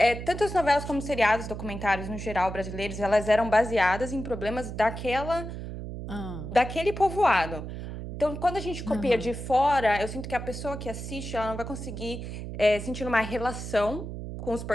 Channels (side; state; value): right; noise; hum, 8 dB below the sound